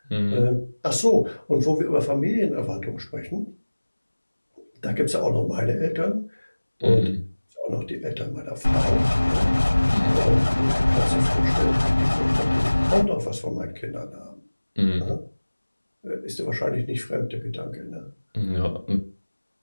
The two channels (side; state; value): both; inverted; correlation -1.00